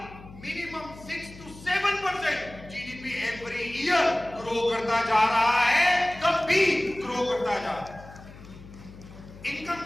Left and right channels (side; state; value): left; noise; hum, 18 dB below the sound